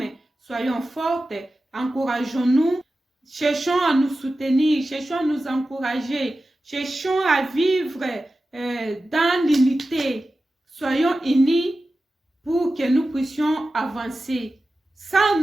Soyons fortes, encourageons-nous, cherchons à nous soutenir, cherchons à nous encourager, cherchons à vivre dans l'unité. Soyons unis pour que nous puissions avancer. Sans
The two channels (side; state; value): both; normal; correlation 0.94